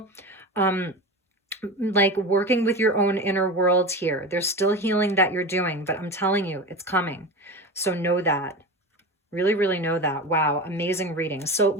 like working with your own inner world here. There's still healing that you're doing, but I'm telling you, it's coming. So know that. Really, really know that. Wow, amazing reading. So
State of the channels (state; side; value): normal; both; correlation 0.27